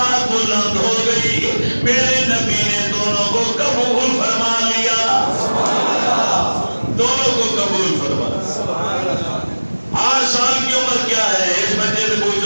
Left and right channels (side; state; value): both; inverted; correlation -1.00